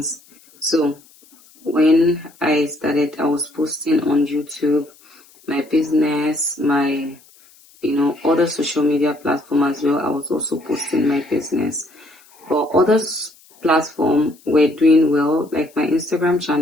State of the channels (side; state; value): left; noise; hiss, 28 dB below the sound